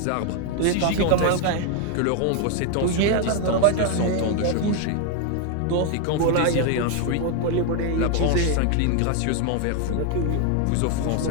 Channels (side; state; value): both; different; correlation 0.01